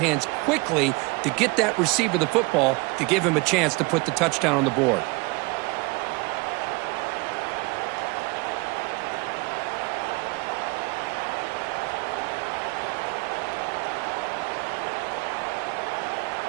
quickly to get that receiver the football to give him a chance to put the touchdown on the board.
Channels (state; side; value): quieter; left; 27.0 dB